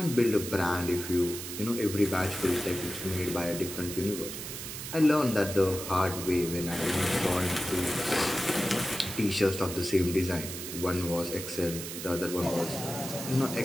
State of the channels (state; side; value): noise; right; hiss, 8 dB below the sound